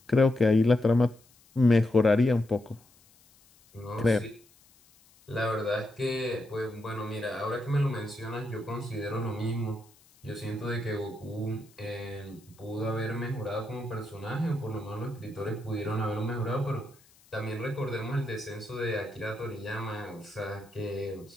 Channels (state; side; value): noise; left; hiss, 29 dB below the sound